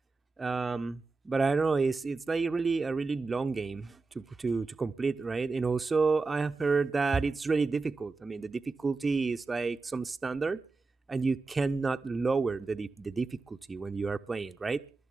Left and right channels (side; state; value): left; quieter; 3.9 dB